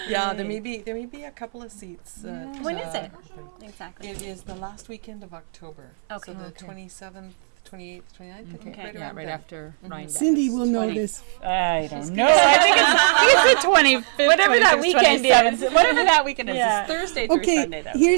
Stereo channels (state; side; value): silent; left; 58 dB below the other